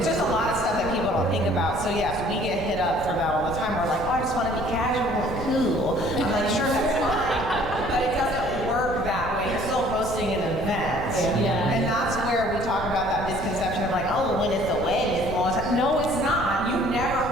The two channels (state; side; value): noise; left; rumble, 9 dB below the sound